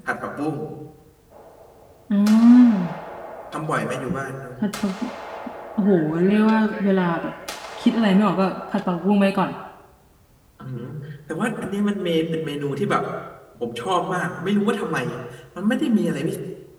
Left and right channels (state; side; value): identical; both; correlation 1.00